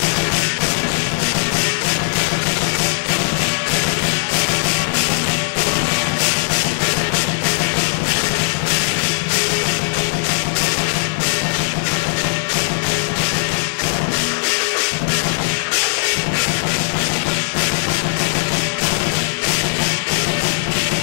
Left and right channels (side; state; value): right; silent; 67 dB below the other